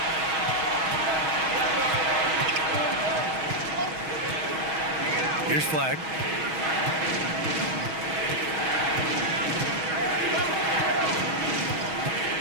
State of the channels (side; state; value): left; late; 6.3 ms